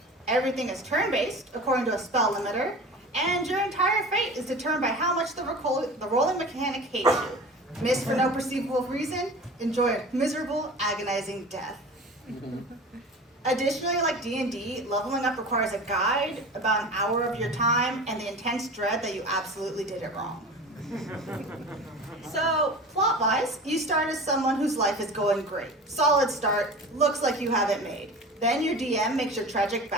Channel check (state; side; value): normal; both; correlation 0.35